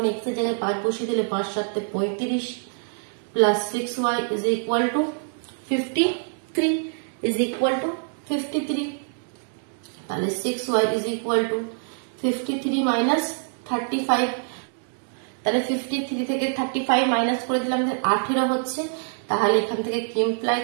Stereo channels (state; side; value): silent; left; 62 dB below the other